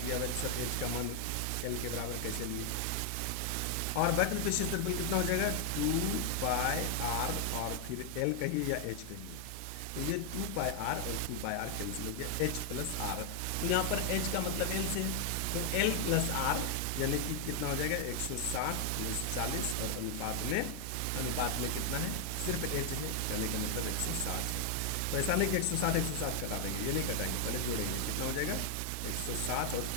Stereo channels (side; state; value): both; different; correlation 0.00